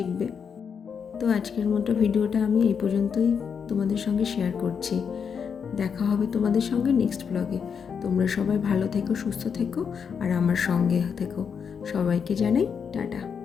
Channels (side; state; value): right; quieter; 6.7 dB